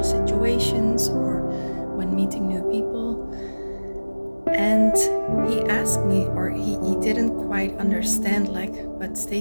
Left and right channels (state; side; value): inverted; both; correlation -1.00